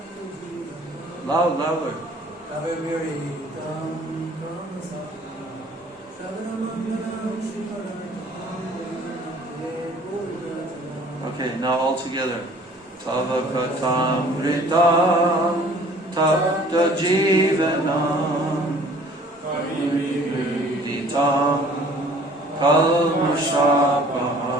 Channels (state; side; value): normal; both; correlation 0.52